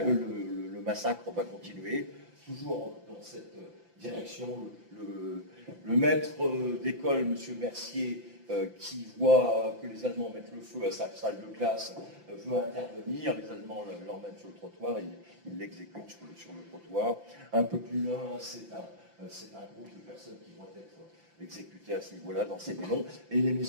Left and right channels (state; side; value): late; left; 5.9 ms